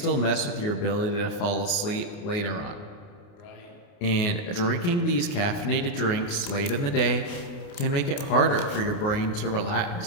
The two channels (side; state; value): right; late; 29 ms